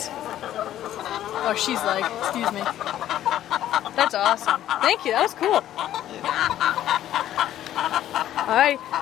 Oh, she's like, excuse me. That's awesome. Thank you, that was cool. Alright,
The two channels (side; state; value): right; quieter; 12.3 dB